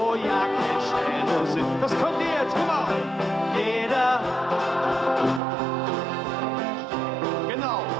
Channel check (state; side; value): drops out; left; at 5.4 s